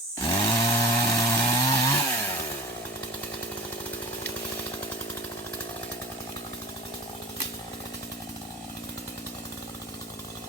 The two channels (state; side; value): normal; both; correlation 0.37